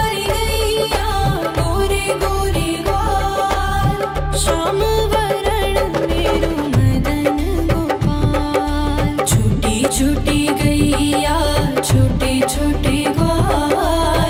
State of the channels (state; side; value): identical; both; correlation 1.00